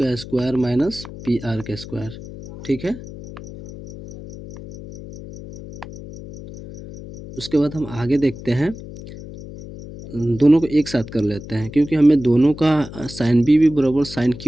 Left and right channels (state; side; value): noise; left; hum, 14 dB below the sound